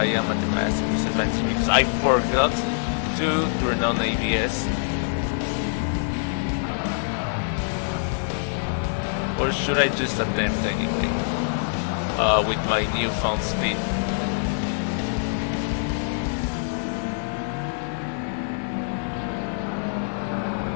am at a massive disadvantage because I forgot to turn on ABS? Or should I just attempt anyway? with my newfound speed.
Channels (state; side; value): silent; right; 57 dB below the other